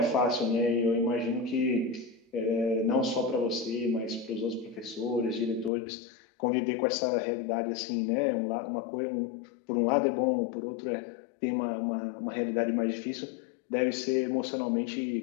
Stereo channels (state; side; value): drops out; right; at 5.7 s